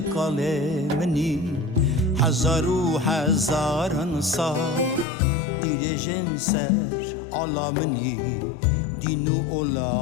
کاله منی هزار و هزاران سال دیر جنسر علا منی دین و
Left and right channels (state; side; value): drops out; right; at 5.1 s